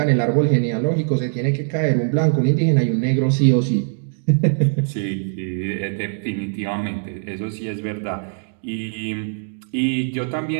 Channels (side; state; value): left; silent; digital silence